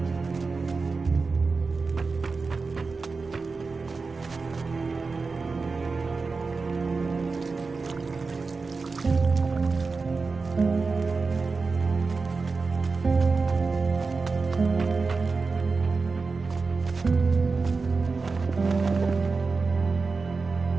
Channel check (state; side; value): quieter; left; 4.3 dB